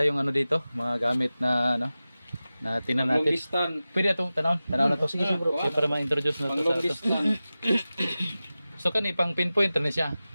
dito, mga gamit na na tinan natin. Pwede itong tanaw na to. Sige bro. So, para ma-introduce na to sa ato. So kani pang pinpoint na siya.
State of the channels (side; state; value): both; inverted; correlation -0.96